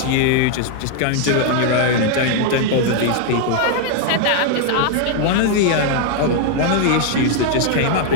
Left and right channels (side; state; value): both; different; correlation 0.00